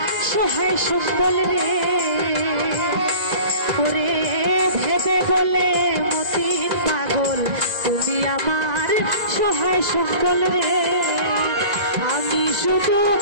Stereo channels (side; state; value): left; late; 2.0 ms